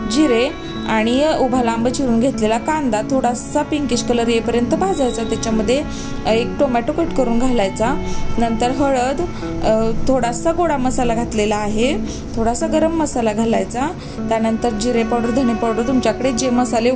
जिरे आणि उभा लांब चिरून घेतलेला कांदा थोडासा पिंकिश कलर येईपर्यंत भाजायचा। त्याच्यामध्ये 1 टोमॅटो कट करून घालायचा। नंतर हळद, थोडासा गोडा मसाला घातलेला आहे, थोडासा गरम मसाला घालायचा। त्यानंतर जिरे पावडर, धने पावडर, तुमच्याकडे जे मसाले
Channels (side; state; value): both; identical; correlation 1.00